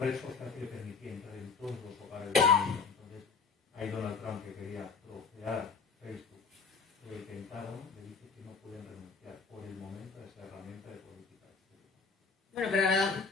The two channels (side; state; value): right; quieter; 5.0 dB